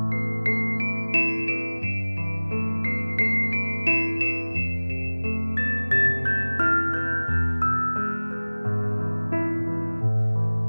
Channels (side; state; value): both; inverted; correlation -1.00